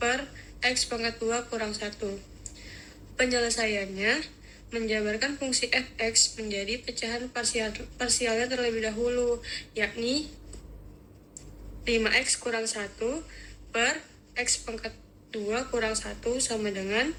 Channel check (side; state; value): both; identical; correlation 1.00